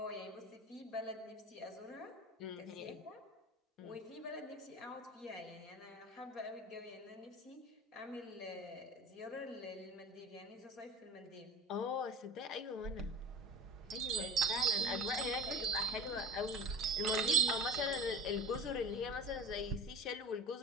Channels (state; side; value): normal; both; correlation 0.39